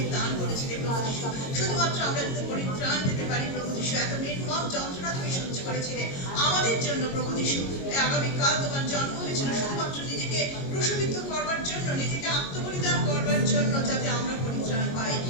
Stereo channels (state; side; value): late; right; 22 ms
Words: দান করেছিলে প্রভু যিশু, শুধুমাত্র আমরা যাতে পরিত্রাণ দিতে পারি প্রভু যিশু। এত নির্মম যন্ত্রণা তুমি সহ্য করেছিলে আমাদের জন্য প্রভু যিশু। আগামীকাল তোমার জন্ম হয়েছিল শুধুমাত্র নিজেকে ক্রুশবিদ্ধ করবার জন্য, নিজেকে আত্মবলিদান করবার জন্য, যাতে আমরা পরিত্রাণ পাই।